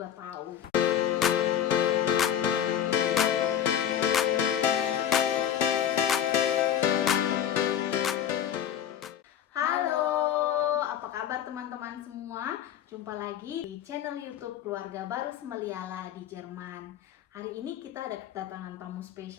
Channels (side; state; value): right; quieter; 9.9 dB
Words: tahu. Halo, apa kabar teman-teman semua? Jumpa lagi di channel YouTube Keluarga Baru Semeliala di Jerman. Hari ini kita ada kedatangan tamu